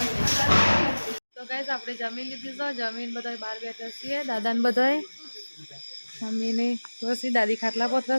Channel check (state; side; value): inverted; both; correlation -1.00